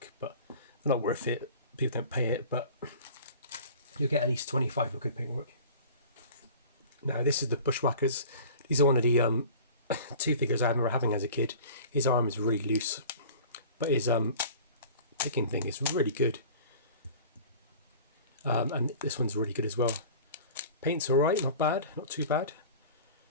but they're not worth it. People don't pay it, but you'll get at least 25 with good paintwork. Now this is the Bushwackers. These are one of the 2 figures I remember having as a kid. His arm is really loose, but his picking thing is really good. And this one's really good as well. Paint's alright, not bad, not too bad.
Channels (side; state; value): both; inverted; correlation -0.42